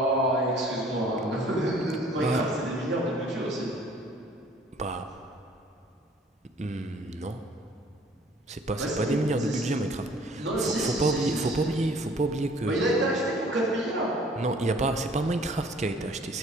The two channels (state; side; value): normal; both; correlation 0.55